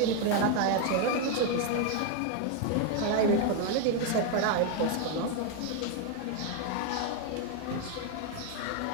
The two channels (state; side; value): different; both; correlation 0.01